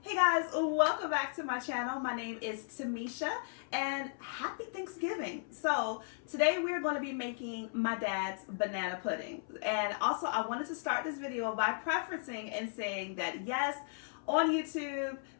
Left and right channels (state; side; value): silent; right; 54 dB below the other